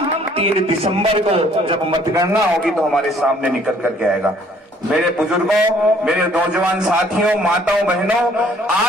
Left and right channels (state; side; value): normal; both; correlation 0.60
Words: 3 दिसंबर को जब मतगणना होगी तो हमारे सामने निकल करके आएगा। मेरे बुजुर्गों, मेरे नौजवान साथियों, माताओं, बहनों,